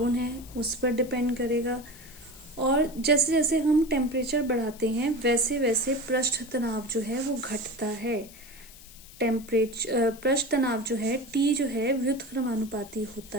है, उस पर डिपेंड करेगा। और जैसे जैसे हम टेम्परेचर बढ़ाते हैं वैसे वैसे पृष्ठ तनाव जो है वो घटता है। पृष्ठ तनाव जो है T जो है व्युत्क्रमानुपाती होता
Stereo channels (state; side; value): noise; left; hiss, 20 dB below the sound